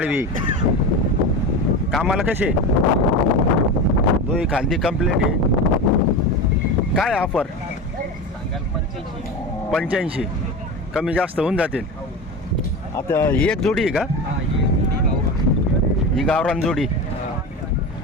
कामाला कसे? दोही खांदी कंप्लीट आहे. काय ऑफर? 85. कमी जास्त होऊन जातील. आता ही एक जोडी आहे का? ही गावरान जोडी.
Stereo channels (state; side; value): normal; both; correlation 0.25